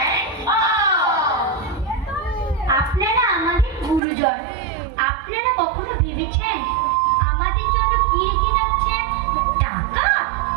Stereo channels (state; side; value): drops out; left; at 4.0 s